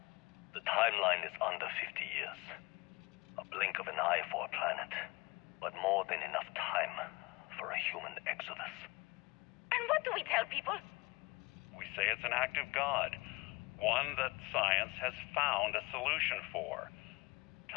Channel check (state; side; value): quieter; right; 24.7 dB